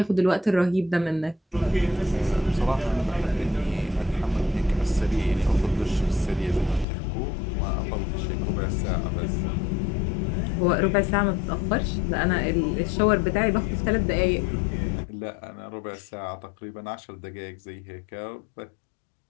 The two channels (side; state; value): right; drops out; at 6.9 s